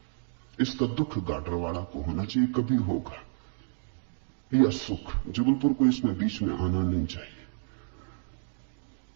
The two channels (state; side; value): silent; left; digital silence